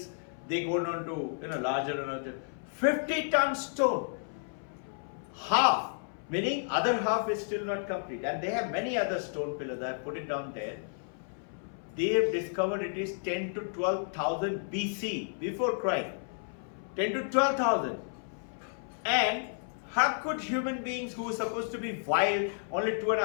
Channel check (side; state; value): right; silent; 57 dB below the other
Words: they go down to larger and larger. 50 ton stone. Half, meaning other half is still not complete. And they have many other stone pillars. I have put it down there. They have discovered it is 10 to 12,000 BC, before Christ. 10 to 12,000. And how could human beings who were supposed to be wild, only